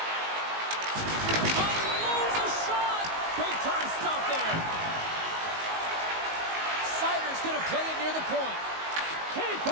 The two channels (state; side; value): late; left; 19 ms